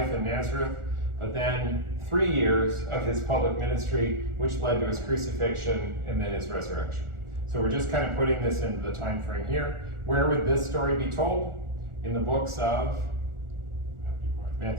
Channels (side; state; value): left; late; 1.4 ms